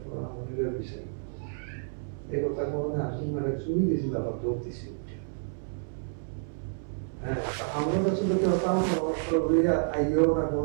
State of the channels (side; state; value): left; silent; 58 dB below the other